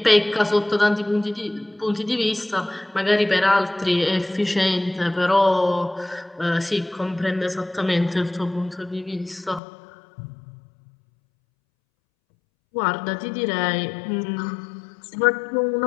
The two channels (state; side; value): drops out; right; at 9.6 s